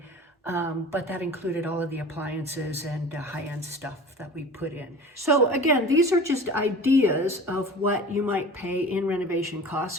But that included all of the appliances and high-end stuff that we put in. So again, these are just ideas of what you might pay in renovation costs.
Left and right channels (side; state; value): both; normal; correlation 0.39